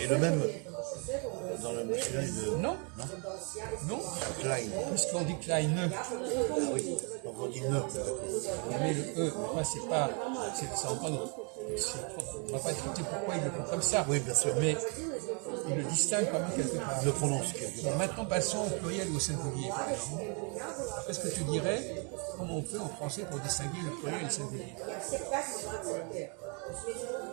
le même dans le masculin et le... Non. Klein. Puisqu'on dit kleine. Ah oui, donc on dit ne. On met le E, moi c'est pas. C'est encore. On ne va pas expliquer pourquoi ils le font comme ça. Oui, bien sûr. Mais ils le distinguent quand même quelque part. Il le prononce quelque part. Bon, maintenant passons au pluriel ou au singulier. Qu'est-ce que tu dirais? Comment on fait en français pour distinguer le pluriel et le singulier?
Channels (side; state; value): left; quieter; 35.8 dB